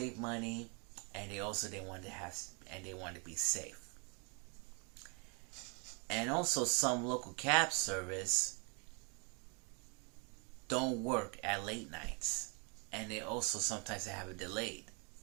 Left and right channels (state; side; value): quieter; left; 34.7 dB